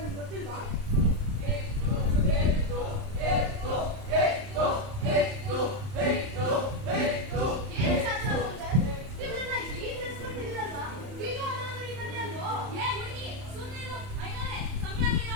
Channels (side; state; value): left; late; 31 ms